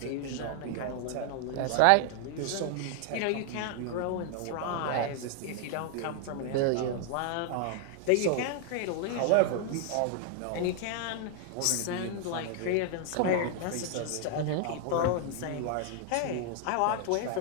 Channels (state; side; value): different; both; correlation 0.00